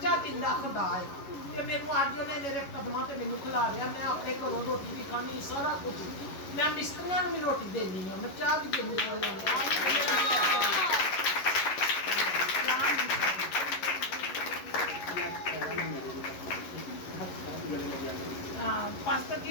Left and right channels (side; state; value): right; late; 11 ms